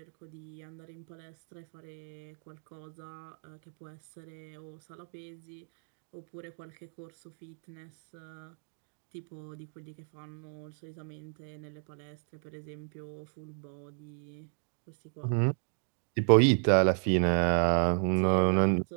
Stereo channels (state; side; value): silent; left; 55 dB below the other